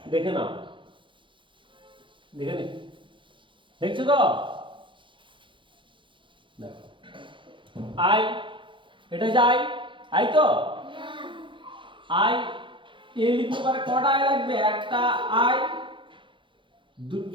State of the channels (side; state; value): left; late; 0.24 ms